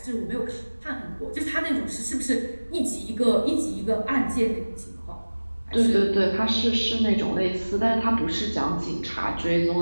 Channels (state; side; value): inverted; both; correlation -1.00